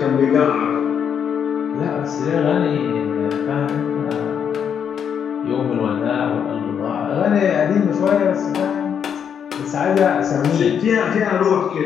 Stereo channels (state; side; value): quieter; right; 7.9 dB